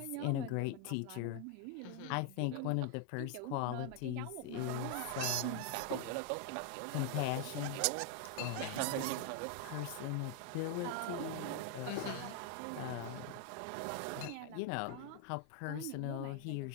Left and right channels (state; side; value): different; both; correlation 0.00